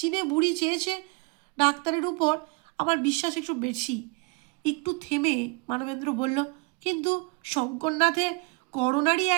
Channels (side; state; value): left; quieter; 28.7 dB